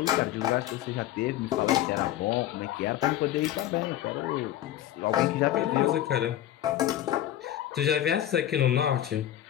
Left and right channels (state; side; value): quieter; right; 12.5 dB